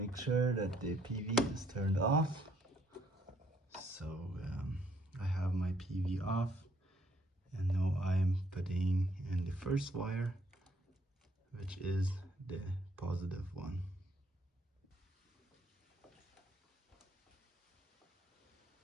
sure that the PV is turned off. So I have my PV off, and now I'm putting in the first wire, which is the positive one.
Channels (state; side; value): normal; both; correlation 0.68